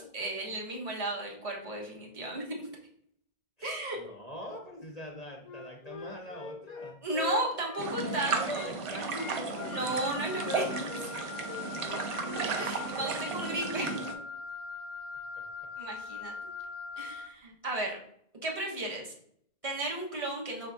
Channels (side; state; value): right; late; 1.5 ms